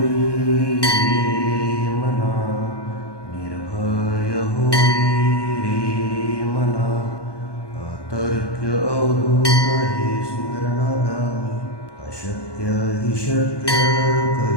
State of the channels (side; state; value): right; late; 1.2 ms